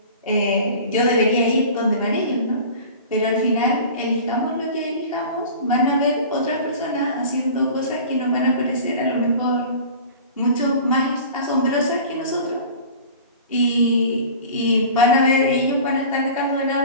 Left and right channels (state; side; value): inverted; both; correlation -0.40